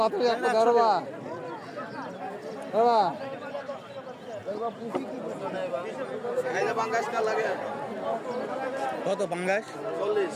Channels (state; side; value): identical; both; correlation 1.00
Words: বাতাসি একটা দরবা বাবা আইলে বাঙ্গাস কাল লাগে কত পাঙ্গাস 40